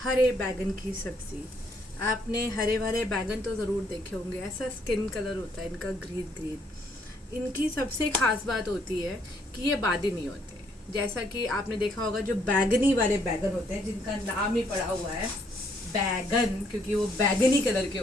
बैगन की सब्ज़ी। आपने हरे भरे बैगन तो ज़रूर देखे होंगे, ऐसा स्किन कलर होता है इनका, ग्रीन ग्रीन। इनकी सबसे ख़ास बात होती है कि ये बादी नहीं होते। जैसा कि आपने देखा होगा जो बैगनी वाले बैगन होते हैं, जिनका नाम ही पड़ा हुआ है बैगन, क्योंकि वो बैगनी कलर के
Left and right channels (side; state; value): both; normal; correlation 0.69